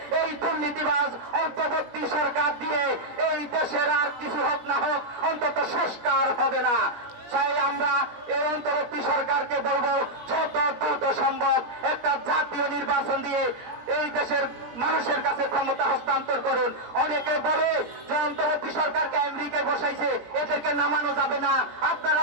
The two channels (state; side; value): late; left; 17 ms